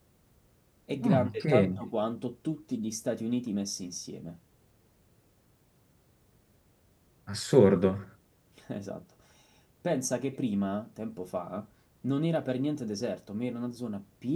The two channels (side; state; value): both; identical; correlation 1.00